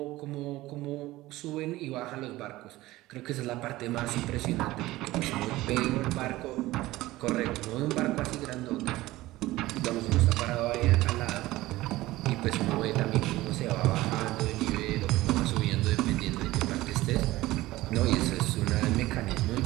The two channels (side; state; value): left; quieter; 17.7 dB